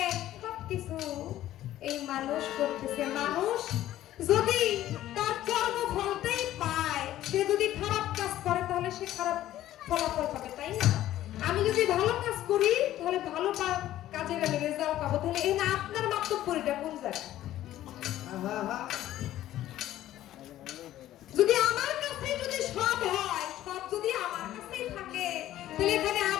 সব কিছু এই মানুষ করতেছে। মানুষ যদি তার কর্মফলটাই পায়, সে যদি খারাপ কাজ করে তাহলে সে খারাপ ফলাফল পাবে, তাই না? আমি যদি ভালো কাজ করি তাহলে ভালো কাজের আমি রেজাল্ট পাবো। তাহলে এই না আপনার মাতব্বরিটা কোন জায়গায়? যদি আমার কাছে যদি সব হয়, সব যদি আমার কাছেই থাকে, তাহলে এখানে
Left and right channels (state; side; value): quieter; right; 13.6 dB